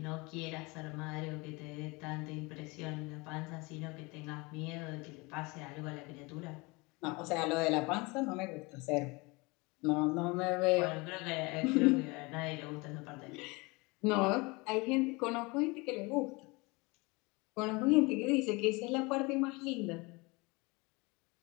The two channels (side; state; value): right; quieter; 25.9 dB